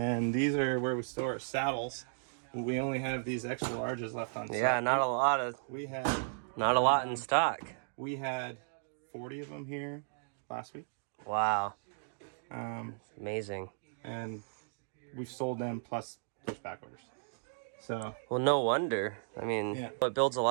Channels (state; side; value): silent; left; digital silence